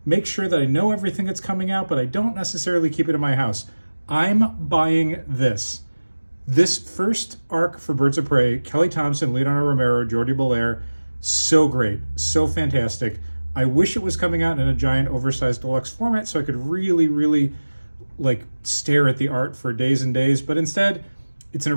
make sure that I know everything that's coming out, but I don't necessarily keep it in my house. I'm buying this. This first arc for Birds of Prey, Kelly Thompson, Leonardo Romero, Jordi Belair, so great, so fantastic. I wish it was coming out in a giant oversized deluxe format so I could really like stare at the art for days and days, but instead it's in a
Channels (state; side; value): inverted; both; correlation -1.00